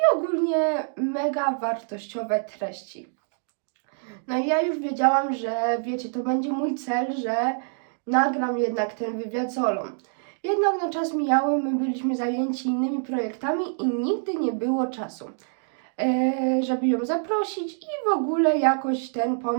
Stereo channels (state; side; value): silent; left; digital silence